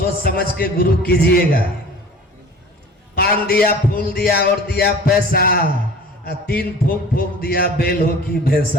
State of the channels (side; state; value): both; normal; correlation 0.44